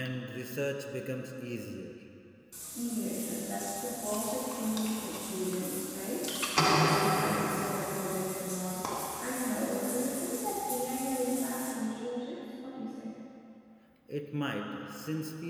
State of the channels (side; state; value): both; identical; correlation 1.00